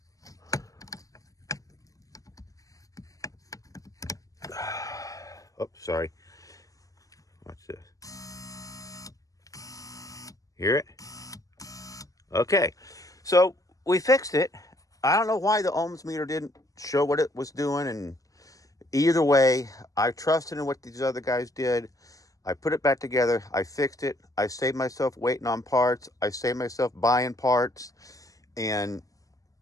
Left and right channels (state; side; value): late; right; 0.16 ms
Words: oh, sorry. Watch this. Hear it? Okay. So we fixed it. I don't know why the ohms meter didn't show what it was doing, and either way, I trusted in what these other guys did. I put it back together. I fixed it. I saved myself waiting on parts. I saved myself buying parts, and